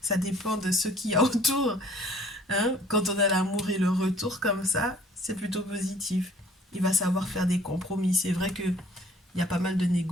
dépend de ce qu'il y a autour. Hein, quand on a l'amour et le retour comme ça, c'est plutôt positif. Il va savoir faire des compromis. C'est vrai qu'il y a pas mal de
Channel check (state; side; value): normal; both; correlation 0.54